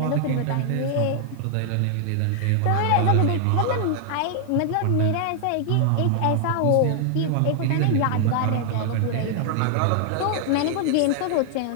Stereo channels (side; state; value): both; different; correlation 0.00